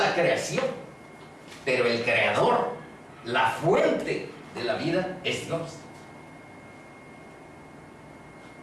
creación, pero el Creador, la fuente de la vida, es Dios.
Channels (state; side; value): identical; both; correlation 1.00